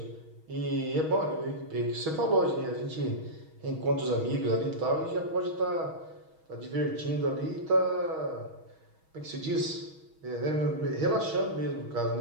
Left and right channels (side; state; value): left; late; 6.3 ms